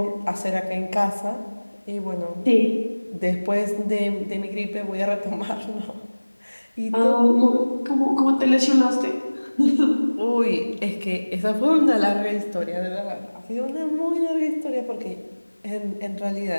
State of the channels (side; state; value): both; inverted; correlation -1.00